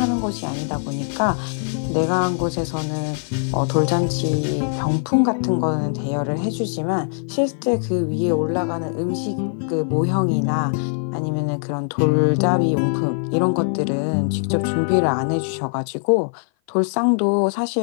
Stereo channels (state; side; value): silent; right; 56 dB below the other